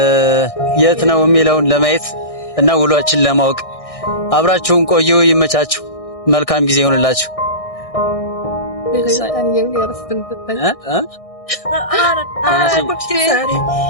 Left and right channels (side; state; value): right; late; 1.6 ms